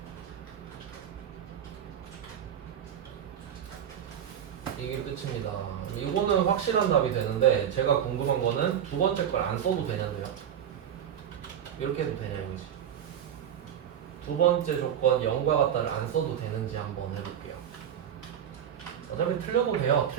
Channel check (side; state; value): left; quieter; 9.3 dB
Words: 이게 끝입니다. 이거는 확실한 답이 되는데 제가 궁금한 거는 두 번째 걸 안 써도 되냐고요. 이렇게 해도 되냐 이거지. 두 번째 조건 0과 같다를 안 써도 되는지 한번 해볼게요. 어차피 틀려도 돼요.